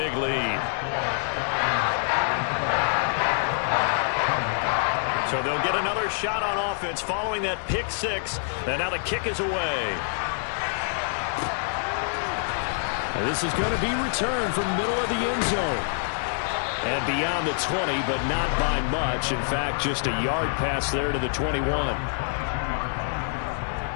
lead. So they'll get another shot on offense following that pick 6, and now the kick is away. Now this is going to be returned from middle of the end zone. And beyond the 20, but not by much. In fact, just a yard pass there to the 21.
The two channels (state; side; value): silent; right; digital silence